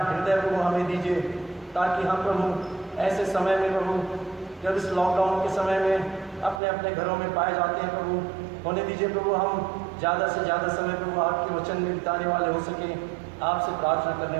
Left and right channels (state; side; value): drops out; left; at 6.6 s